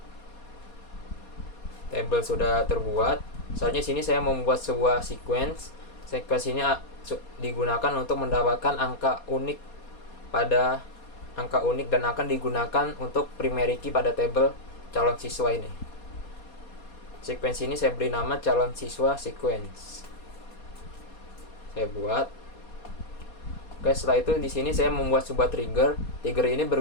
Tabel sudah terbuat. Soalnya sini saya membuat sebuah sequence. Sequence ini digunakan untuk mendapatkan angka unik dan akan digunakan untuk primary key pada tabel calon siswa ini. Sequence ini saya beri nama calon siswa sequence. Saya buat. Oke, setelah itu di sini saya membuat sebuah trigger. Trigger ini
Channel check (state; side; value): late; right; 4.2 ms